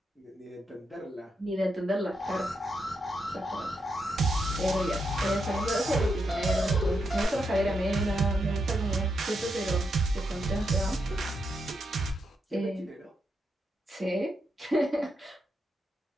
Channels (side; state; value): both; normal; correlation 0.82